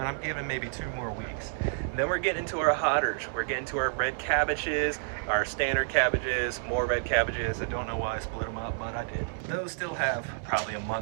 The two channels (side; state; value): left; silent; digital silence